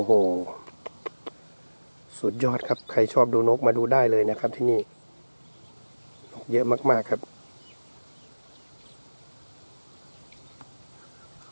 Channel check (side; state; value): both; inverted; correlation -1.00